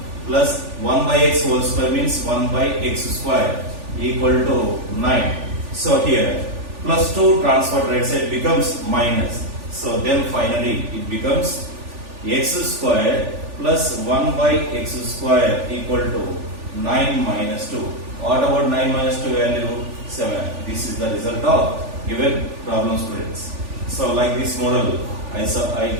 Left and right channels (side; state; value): left; late; 3.4 ms